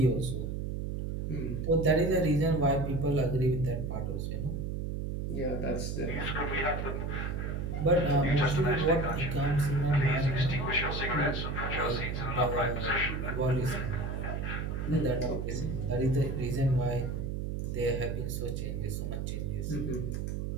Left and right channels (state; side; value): noise; right; hum, 3 dB below the sound